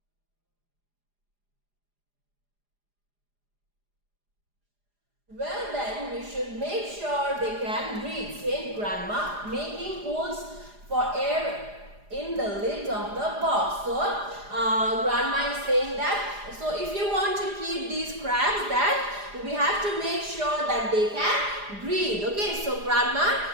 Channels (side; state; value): left; late; 4.9 ms